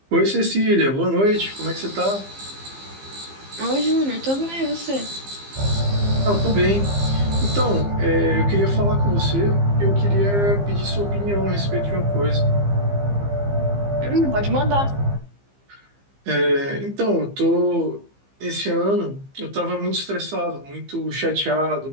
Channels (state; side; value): late; left; 15 ms